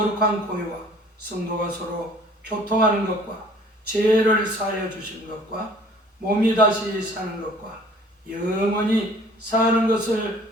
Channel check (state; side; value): normal; both; correlation 0.53